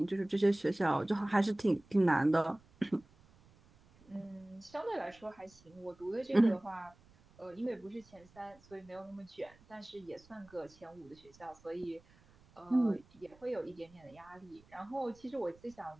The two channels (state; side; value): noise; right; rumble, 27 dB below the sound